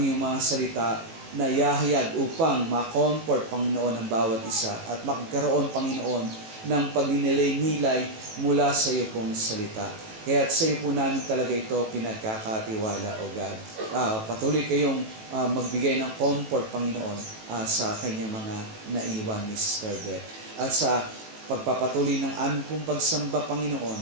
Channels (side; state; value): left; late; 18 ms